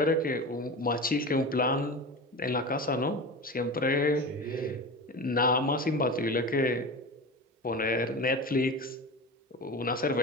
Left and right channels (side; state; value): both; normal; correlation 0.29